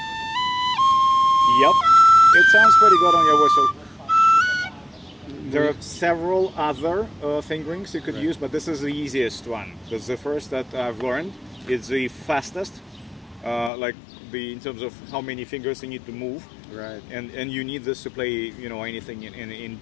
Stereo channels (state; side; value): drops out; right; at 13.7 s